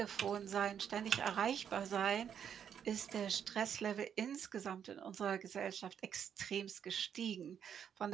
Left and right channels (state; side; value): quieter; left; 8.4 dB